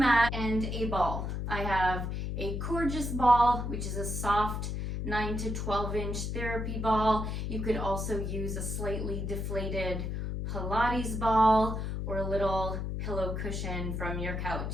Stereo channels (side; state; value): left; noise; hum, 3 dB below the sound